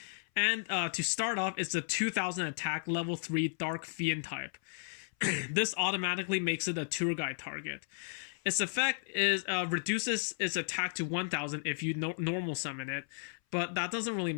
and to start off, it's a 2000 attack, level 3 Dark Fiend type. This automatically makes it a tour guide target. Its effect is reduces its attack to 1000 if you normal summon it, but that doesn't really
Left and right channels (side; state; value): right; silent; 55 dB below the other